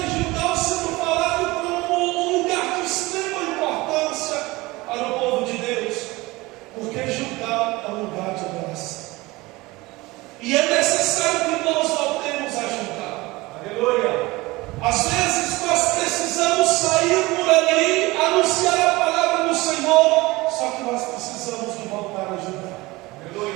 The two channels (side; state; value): left; quieter; 21.4 dB